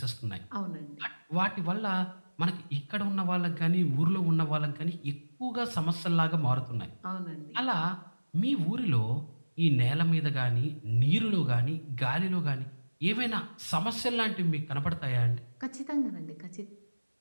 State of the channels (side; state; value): both; inverted; correlation -1.00